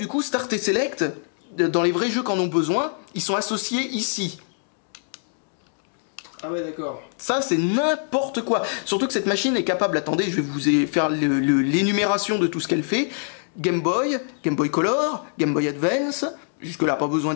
coup, Start et Select, dans les vrais jeux qui en ont besoin, ils sont associés ici. Ah ouais, d'accord. Ça, c'est n'importe quoi. Surtout que cette machine est capable, attendez, je vais vous faire l'énumération de tout ce qu'elle fait. Game Boy Color, Game Boy Advance, jusque là pas besoin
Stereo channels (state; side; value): silent; right; digital silence